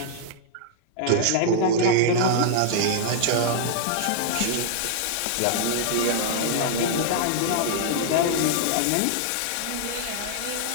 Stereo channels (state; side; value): different; both; correlation -0.01